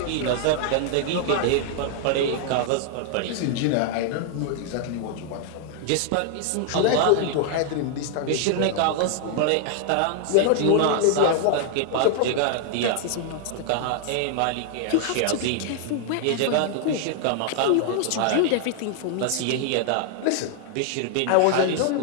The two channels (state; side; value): different; both; correlation 0.00